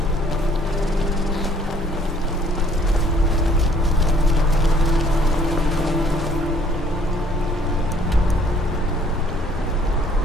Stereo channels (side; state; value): both; normal; correlation 0.60